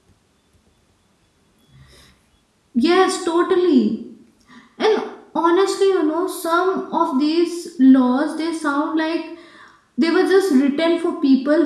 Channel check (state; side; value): identical; both; correlation 1.00